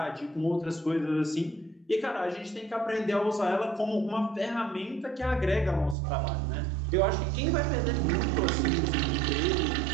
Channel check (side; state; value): left; drops out; at 6.0 s